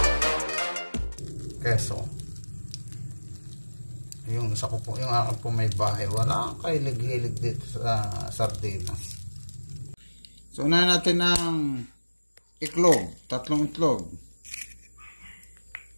Keso. Yung isa ko po, yung akin po may bahay. Wala kang kahilig-hilig dito sa sardinas. So, unahin natin ng itlog. 3 itlog.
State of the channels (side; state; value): both; inverted; correlation -1.00